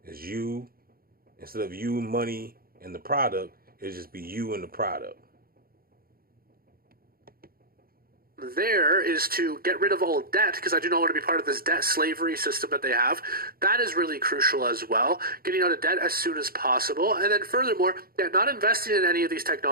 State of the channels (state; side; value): late; left; 0.43 ms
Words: It's you, instead of you, money, and the product, it'll just be you and the product. There is to get rid of all debt, because I do not want to be part of this debt slavery system that they have. That is really crucial as well. Getting out of debt as soon as possible. And then furthermore, not investing in any of these